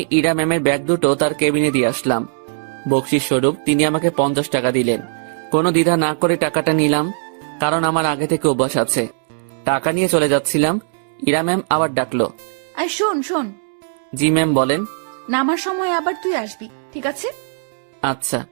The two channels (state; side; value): silent; left; 66 dB below the other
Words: ইরা ম্যামের ব্যাগ দুটো তার কেবিনে দিয়ে আসলাম। বকশিস স্বরূপ তিনি আমাকে 50 টাকা দিলেন। কোনো দ্বিধা না করে টাকাটা নিলাম, কারণ আমার আগে থেকে অভ্যাস আছে। টাকা নিয়ে চলে যাচ্ছিলাম, ইরা ম্যাম আবার ডাকলো। আর শোন শোন, জি ম্যাম বলেন। নামার সময় আবার তুই আসবি, ঠিক আছে? আচ্ছা।